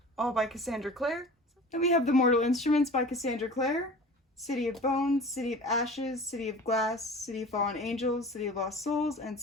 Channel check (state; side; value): normal; both; correlation 0.40